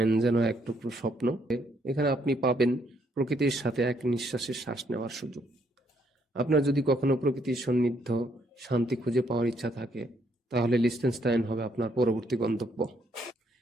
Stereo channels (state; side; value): normal; both; correlation 0.72